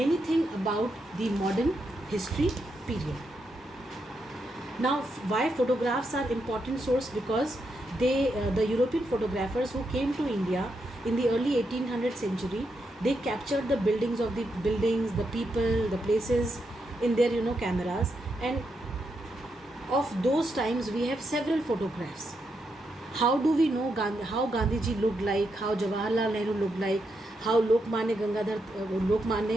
things about the modern history period. Now, why photographs are important source? Because the European photographers who came to India in the early 1800th century, they captured the buildings, the people, the places in their cameras, and of those times we have several photographs. How do we know how Gandhiji looked like, how Jawaharlal Nehru looked like, how Lokmanya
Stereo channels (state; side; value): normal; both; correlation 0.82